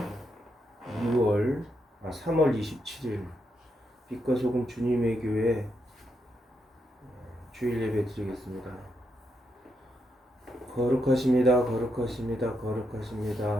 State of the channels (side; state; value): both; normal; correlation 0.81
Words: 3월 27일 빛과 소금 주님의 교회 주일 예배 드리겠습니다. 거룩하십니다. 거룩하십니다.